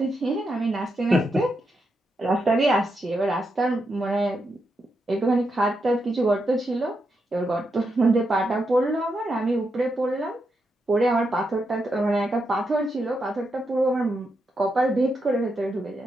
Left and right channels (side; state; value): both; normal; correlation 0.84